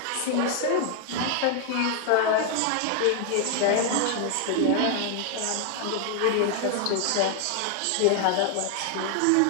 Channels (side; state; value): both; different; correlation 0.00